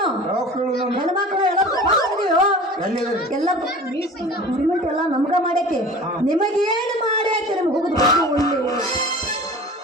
ಯಾವ ಕೇಳು ಹೆಣ್ಮಕ್ಳು ಎಲ್ಲಿದೆ ಎಲ್ಲ ಗೌರ್ಮೆಂಟ್ ಎಲ್ಲ ನಮ್ಗ ಮಾಡೈತಿ. ನಿಮಗೇನು ಮಾಡೈತಿ? ನಿಮ್ಗೆ ಹೋಗುದು ಒಳ್ಳೆ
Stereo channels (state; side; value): normal; both; correlation 0.40